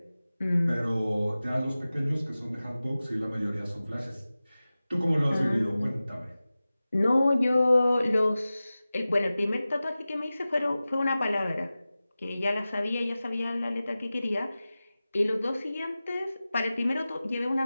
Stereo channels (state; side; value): inverted; both; correlation -0.96